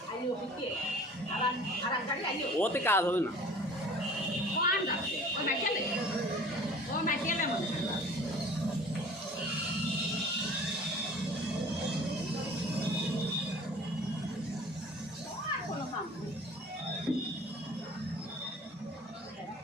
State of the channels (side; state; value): both; normal; correlation 0.46